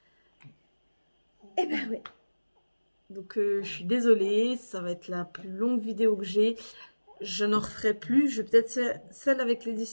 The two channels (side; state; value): both; inverted; correlation -1.00